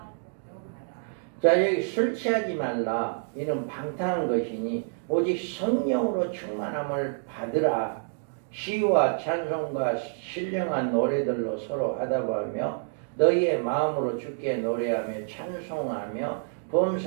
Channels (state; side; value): silent; left; digital silence